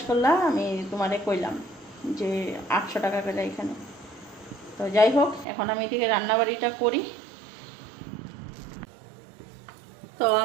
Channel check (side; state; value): left; drops out; at 5.5 s